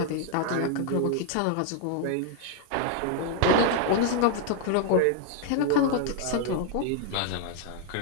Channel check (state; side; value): different; both; correlation 0.00